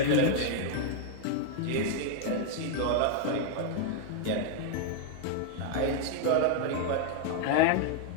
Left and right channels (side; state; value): both; different; correlation 0.00